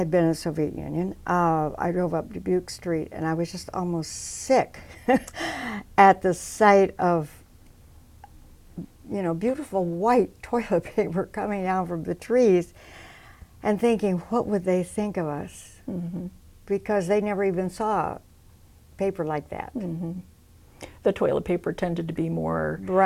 been in the Soviet Union, I drove up Dubuque Street and I was just almost sick at the sight of beautiful white toilet paper coming down from the trees, and thinking, what would they think of us? Because they never even saw paper like that. The toilet paper tended to be more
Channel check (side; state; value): both; identical; correlation 1.00